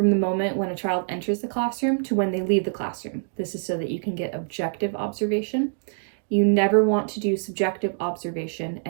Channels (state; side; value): silent; left; digital silence